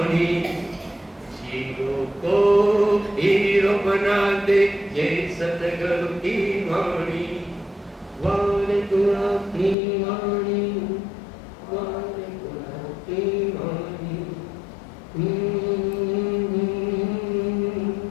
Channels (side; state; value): right; drops out; at 9.8 s